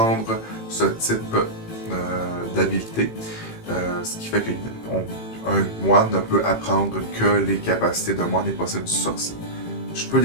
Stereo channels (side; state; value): right; late; 18 ms